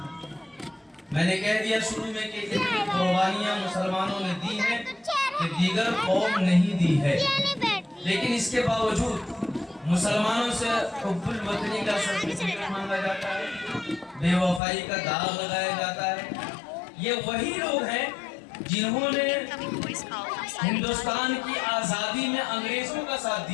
میں نے کہہ دیا شروع میں کہ اتنی قربانیاں مسلمانوں نے دی ہیں کہ دیگر قوم نہیں دی ہے، لیکن اس کے باوجود مسلمانوں سے حب الوطنی کا سرٹیفکیٹ مانگا جاتا ہے، بے وفائی کا داغ لگایا جاتا ہے۔ یہ وہی لوگ ہیں جنہوں نے ہندوستان کی آزادی میں انگریزوں کا ساتھ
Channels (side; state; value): right; drops out; at 14.6 s